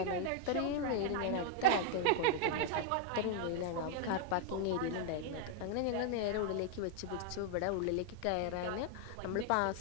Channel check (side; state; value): both; different; correlation 0.00